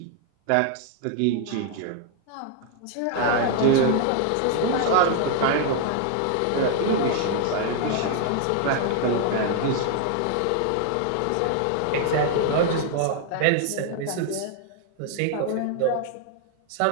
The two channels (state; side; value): different; both; correlation 0.00